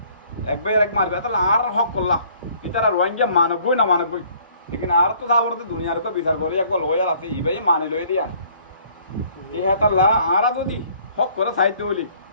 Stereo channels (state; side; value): inverted; both; correlation -0.59